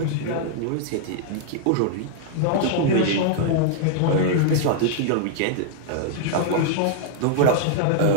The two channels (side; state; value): both; different; correlation -0.01